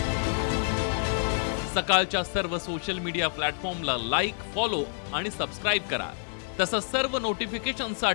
सकाळच्या सर्व सोशल मीडिया प्लॅटफॉर्मला लाईक, फॉलो आणि सबस्क्राईब करा. तसंच सर्व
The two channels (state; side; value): silent; right; 57 dB below the other